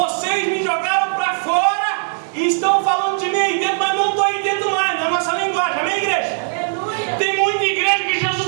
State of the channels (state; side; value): silent; left; digital silence